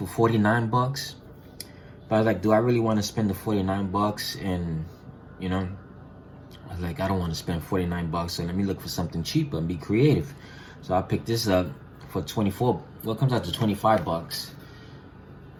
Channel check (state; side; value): identical; both; correlation 1.00